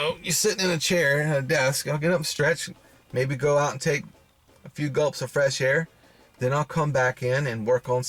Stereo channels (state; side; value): identical; both; correlation 1.00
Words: sitting in a chair at a desk. I'll get up, stretch, maybe go out and take a few gulps of fresh air. Then I'll come back in and work on